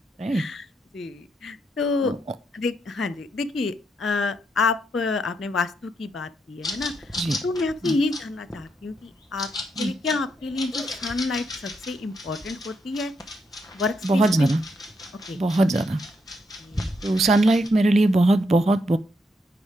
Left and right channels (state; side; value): normal; both; correlation 0.79